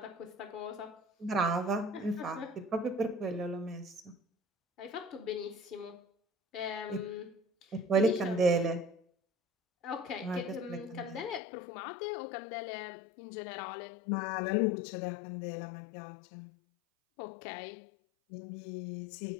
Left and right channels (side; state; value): right; drops out; at 11.4 s